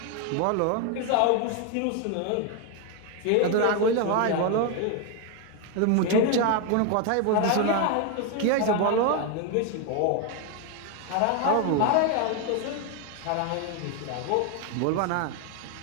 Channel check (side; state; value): both; different; correlation 0.01